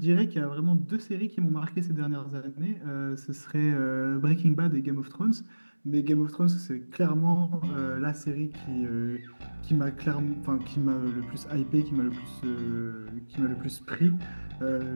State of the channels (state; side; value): inverted; both; correlation -1.00